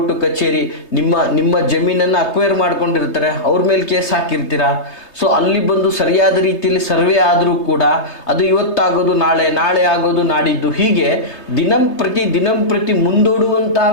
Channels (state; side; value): late; right; 3.3 ms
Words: ಕಚೇರಿ ನಿಮ್ಮ ಜಮೀನನ್ನು ಅಕ್ವೈರ್ ಮಾಡ್ಕೊಂಡಿರ್ತಾರೆ, ಅವ್ರ ಮೇಲೆ ಕೇಸ್ ಹಾಕಿರ್ತೀರಾ. ಸೊ ಅಲ್ಲಿ ಬಂದು ಸರಿಯಾದ ರೀತಿಯಲ್ಲಿ ಸರ್ವೆ ಆದರೂ ಕೂಡ ಅದು ಇವತ್ತಾಗೋದು ನಾಳೆ, ನಾಳೆ ಆಗೋದು ನಾಡಿದ್ದು, ಹೀಗೆ ದಿನಂಪ್ರತಿ ಮುಂದೂಡುವಂತಹ